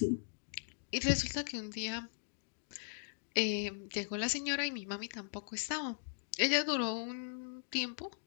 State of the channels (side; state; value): right; silent; digital silence